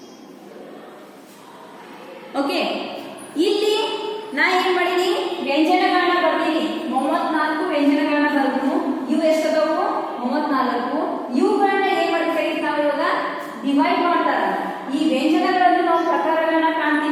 ಓಕೆ, ಇಲ್ಲಿ ನಾ ಏನ್ ಮಾಡೀನಿ? ವ್ಯಂಜನಗಳನ್ನ ಬರ್ತೀನಿ. 34 ವ್ಯಂಜನಗಳನ್ನ ಬರ್ತೀನಿ. ಇವು ಎಷ್ಟದಾವು? 34. ಇವುಗಳನ್ನ ಏನ್ ಮಾಡಿ ಕರೀತಾವ? ಇವಾಗ ಡಿವೈಡ್ ಮಾಡ್ತಾರ. ಈ ವ್ಯಂಜನಗಳಲ್ಲಿ ನಾವು ಪ್ರಕಾರಗಳನ್ನ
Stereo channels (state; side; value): identical; both; correlation 1.00